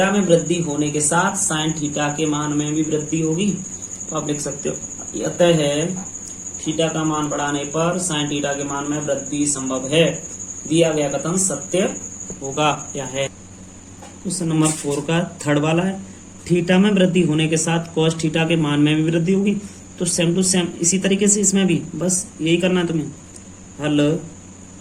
में वृद्धि होने के साथ साइन थीटा के मान में भी वृद्धि होगी, तो आप लिख सकते हो अतः है थीटा का मान बढ़ाने पर साइन थीटा के मान में वृद्धि संभव है। दिया गया कथन सत्य होगा या है। क्वेश्चन नंबर 4 का थर्ड वाला है, थीटा में वृद्धि होने के साथ कॉस थीटा के मान में भी वृद्धि होगी। तो सेम टू सेम इसी तरीके से इसमें भी बस यही करना है तुम्हें, हल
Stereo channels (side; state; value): both; identical; correlation 1.00